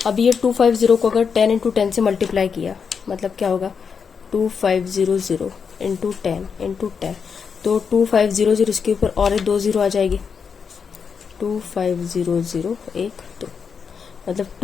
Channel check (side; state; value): right; quieter; 6.2 dB